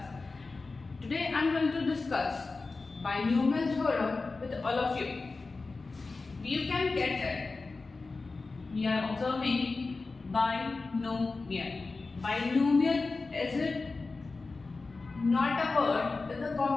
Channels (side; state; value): right; quieter; 3.8 dB